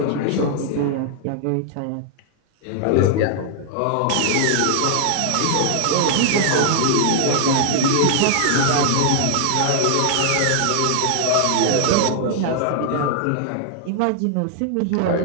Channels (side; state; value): both; different; correlation 0.00